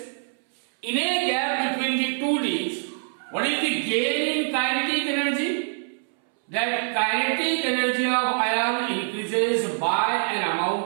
in a gap between the two Ds, what is the gain in kinetic energy? That kinetic energy of ion increases by an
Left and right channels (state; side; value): silent; left; 62 dB below the other